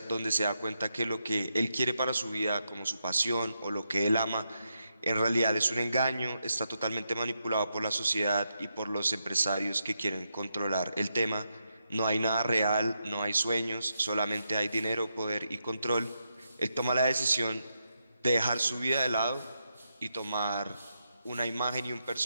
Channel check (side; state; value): both; inverted; correlation -0.83